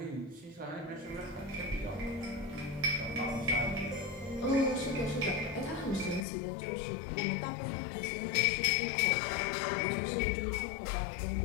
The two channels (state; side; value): drops out; right; at 6.2 s